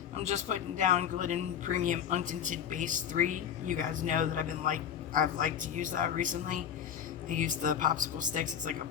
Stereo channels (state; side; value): quieter; right; 8.7 dB